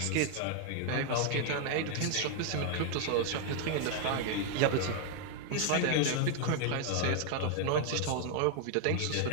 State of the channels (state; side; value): different; both; correlation 0.00